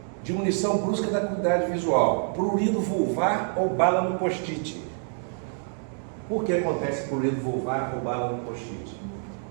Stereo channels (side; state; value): left; silent; 60 dB below the other